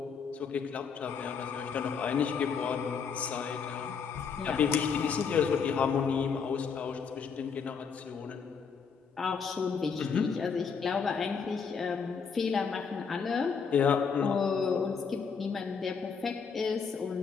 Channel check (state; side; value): quieter; right; 6.0 dB